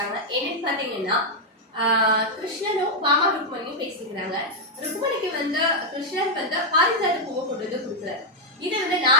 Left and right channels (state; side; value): normal; both; correlation 0.00